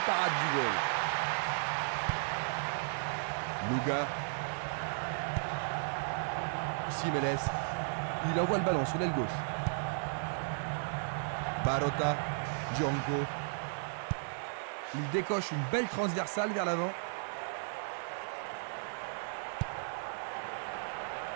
parade du goal. Luga. Simeles. Il envoie le ballon sur l'aile gauche. Barota. Django. Il décoche une belle transversale vers l'avant.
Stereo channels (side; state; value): left; silent; 54 dB below the other